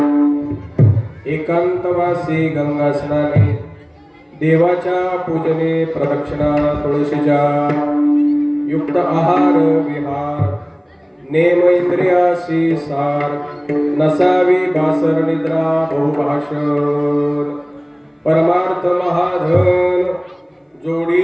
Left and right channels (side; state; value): both; identical; correlation 1.00